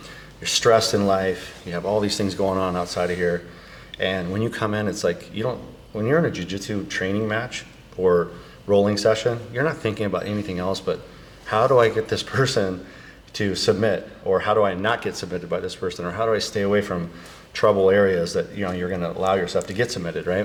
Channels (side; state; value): both; identical; correlation 1.00